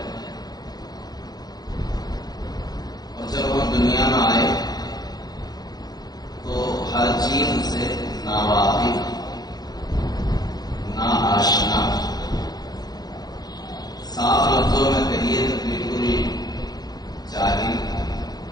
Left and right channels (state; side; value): late; right; 0.19 ms